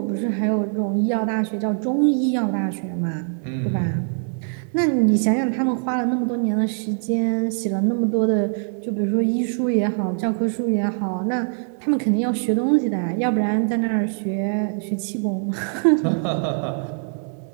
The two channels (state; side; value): silent; left; 58 dB below the other